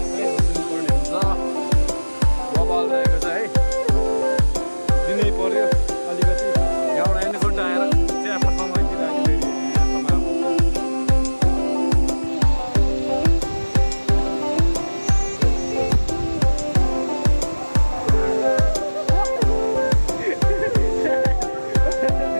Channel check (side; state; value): both; inverted; correlation -1.00